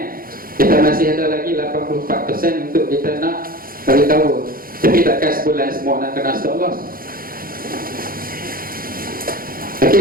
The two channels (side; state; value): left; late; 0.42 ms